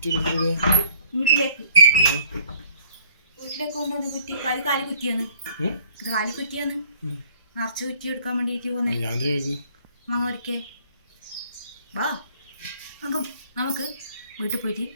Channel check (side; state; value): both; inverted; correlation -0.60